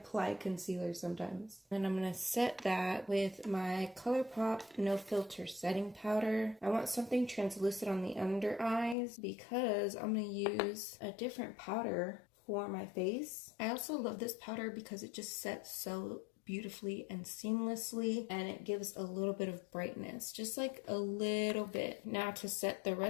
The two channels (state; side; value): drops out; right; at 9.0 s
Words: concealer sometimes. And I'm gonna set that with my ColourPop No Filter Setting Powder. I want something translucent on the under eyes because I'm gonna use a different powder for my face. I also love this powder because it just sets so beautifully and seamlessly, and it gives a little bit of brightness, just like a little bit. Now to set the